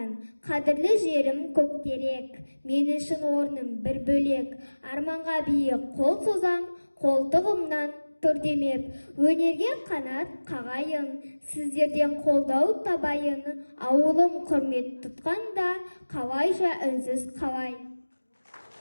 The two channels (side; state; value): both; inverted; correlation -1.00